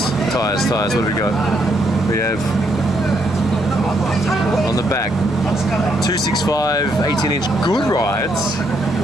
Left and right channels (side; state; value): right; noise; hum, 19 dB below the sound